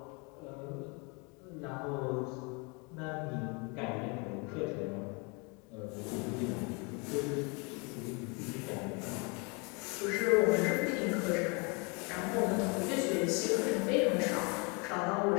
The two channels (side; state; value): right; quieter; 31.2 dB